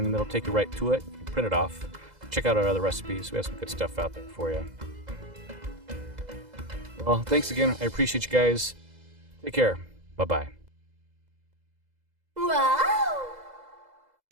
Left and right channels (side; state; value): left; late; 2.0 ms